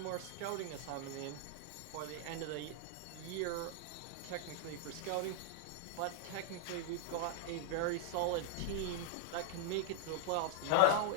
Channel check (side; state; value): both; different; correlation -0.01